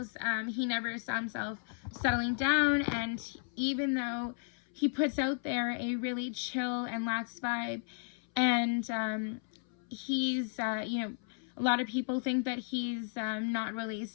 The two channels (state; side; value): silent; right; 55 dB below the other